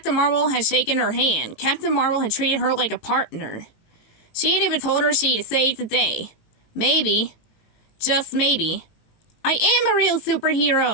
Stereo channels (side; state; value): right; late; 18 ms